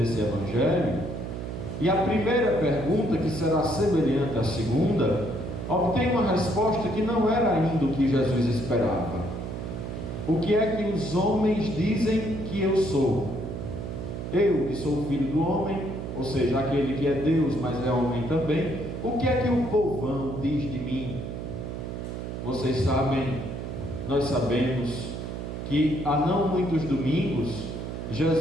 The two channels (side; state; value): right; noise; hum, 6 dB below the sound